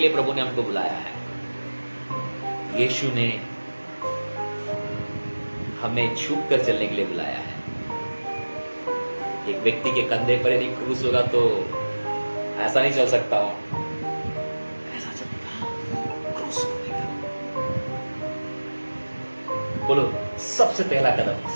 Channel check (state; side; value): inverted; both; correlation -1.00